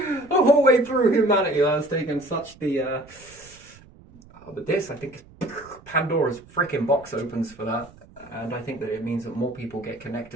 whole way through humanity. That's taken such the but this, I think, Pandora's freaking box opens for that, and I think that it means that more people get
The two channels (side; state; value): right; noise; rumble, 24 dB below the sound